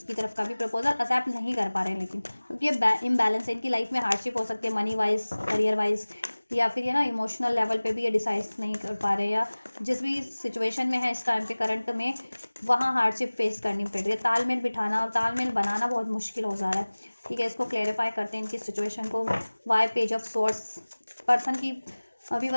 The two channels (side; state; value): both; inverted; correlation -1.00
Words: तरफ का भी प्रपोजल एक्सेप्ट नहीं कर पा रहे हैं। लेकिन क्योंकि ये इम्बैलेंस है, इनकी लाइफ में हार्डशिप हो सकती है, मनी वाइज, करियर वाइज, या फिर ये ना इमोशनल लेवल पे भी ये डिसाइड नहीं कर पा रहे, या जिस भी सिचुएशन में है इस टाइम पे करंट में, वहाँ हार्डशिप फेस करनी पड़ रही है। तालमेल बिठाना और तालमेल बनाना बहुत मुश्किल हो जा रहा है। ठीक है। इसको क्लेरिफाई करते हैं इनकी सिचुएशन को। Why page of swords, person की, अभी